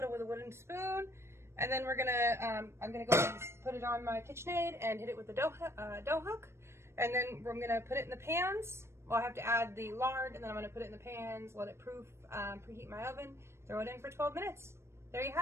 with a wooden spoon, and then we're going to, I'm going to go ahead and put it on my KitchenAid and hit it with the dough hook, and then we're going to put it in the pans. Well, I have to add the lard, and then I'm going to put it in the pans, let it preheat my oven, throw it in for 12 minutes. There you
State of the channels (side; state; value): left; late; 0.13 ms